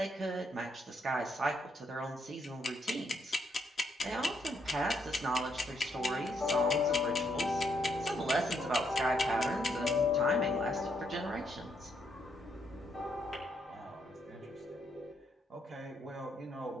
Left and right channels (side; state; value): both; normal; correlation 0.75